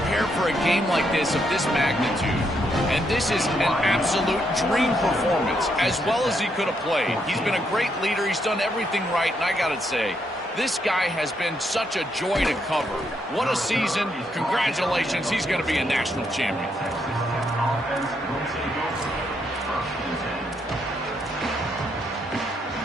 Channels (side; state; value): both; normal; correlation 0.77